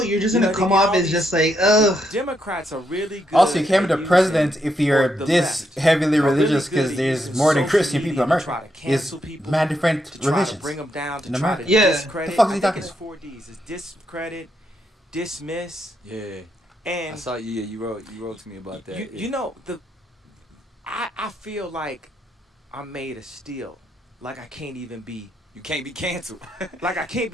you're just gonna come off as just like, ugh. Democrats are really good. Also, you can't be the president if you're this heavily religious, because there's more than Christian people in America. There's mad different religions in America. Yeah. The fuck is he talking about? 4 Ds. It's discredit, dismiss. Yeah. And I saw you. Yeah, you wrote to me about that. You know I feel like I'm made of steel. Like I can't even be. You can't be canceled. Like I can't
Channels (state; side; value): normal; both; correlation 0.79